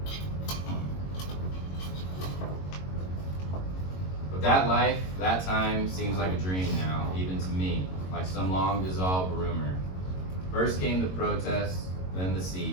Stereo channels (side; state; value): right; late; 22 ms